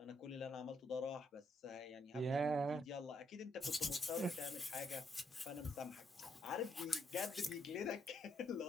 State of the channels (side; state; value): both; normal; correlation 0.75